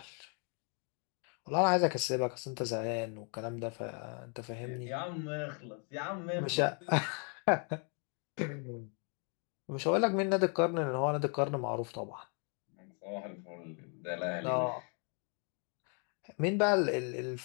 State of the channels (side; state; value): right; quieter; 39.6 dB